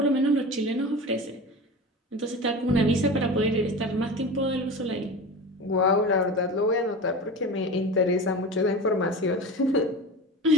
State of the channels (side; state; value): both; normal; correlation 0.30